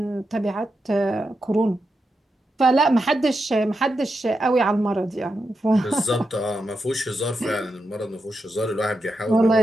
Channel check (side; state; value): both; normal; correlation 0.87